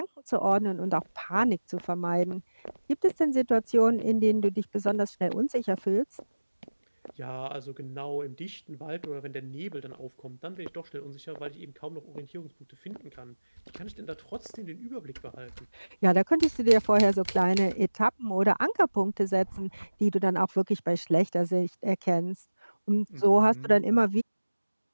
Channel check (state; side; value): inverted; both; correlation -1.00